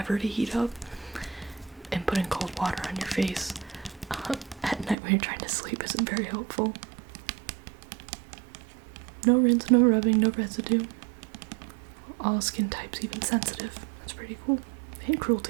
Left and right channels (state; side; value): drops out; left; at 5.0 s